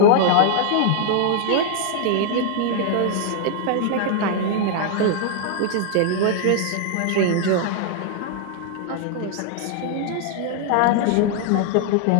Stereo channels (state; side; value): different; both; correlation 0.00